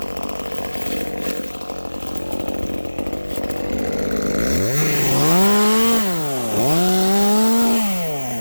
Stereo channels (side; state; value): both; inverted; correlation -1.00